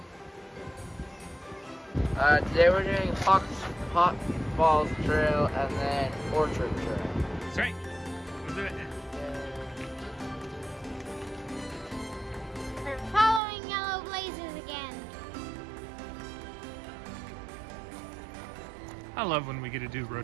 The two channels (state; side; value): drops out; left; at 13.4 s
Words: Today we're doing Hot Falls Trail and then Orchard Trail. That's right. We'll do it. We're following yellow blazes again. I love when we get to do